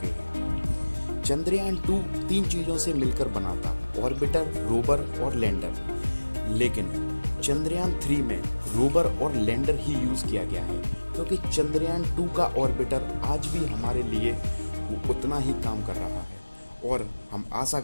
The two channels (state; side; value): inverted; both; correlation -1.00